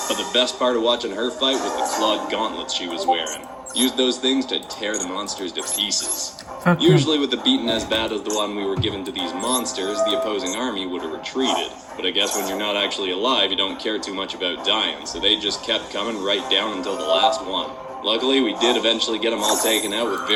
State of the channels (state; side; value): identical; both; correlation 1.00